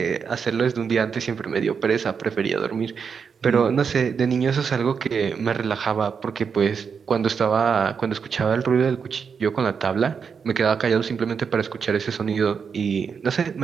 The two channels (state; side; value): quieter; left; 6.2 dB